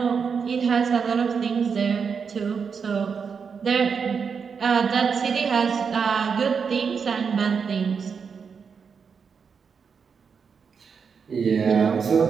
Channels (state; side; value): quieter; left; 6.1 dB